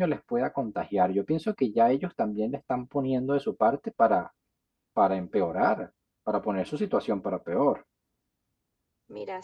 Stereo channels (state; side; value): identical; both; correlation 1.00